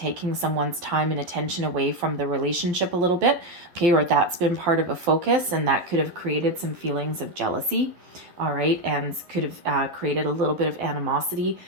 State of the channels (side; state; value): left; late; 12 ms